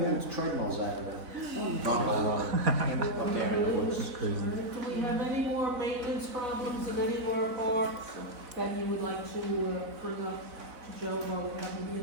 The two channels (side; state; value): left; late; 4.0 ms